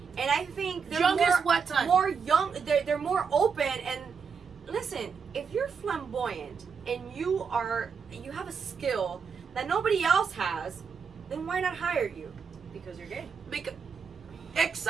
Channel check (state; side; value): quieter; left; 5.9 dB